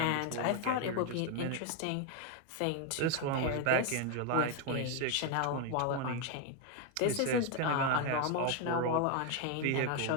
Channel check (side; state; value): both; different; correlation 0.01